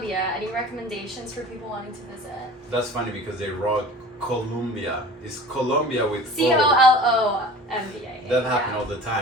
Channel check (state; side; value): normal; both; correlation 0.41